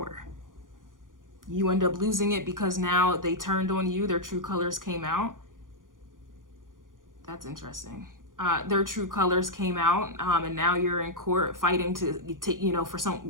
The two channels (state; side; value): late; left; 0.89 ms